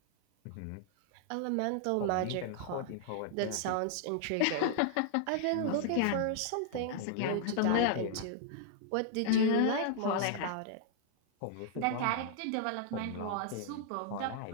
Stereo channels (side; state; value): both; different; correlation -0.01